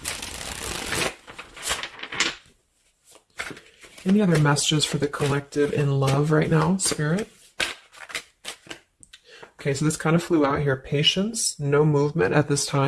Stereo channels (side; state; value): both; identical; correlation 1.00